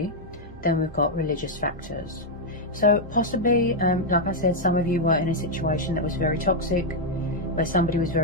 Then we've got religious factors. So possibly, like I said, some of you were in a situation that was very toxic, where somebody was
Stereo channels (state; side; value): normal; both; correlation -0.02